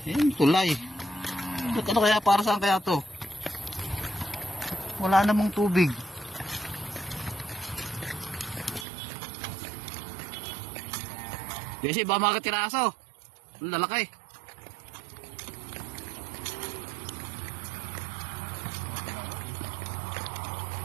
Yan, tulay. Ano kaya, para saan kaya to? Wala namang tubig. Kasi ba mga katiraso? Ang lalaki.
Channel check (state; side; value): drops out; left; at 8.8 s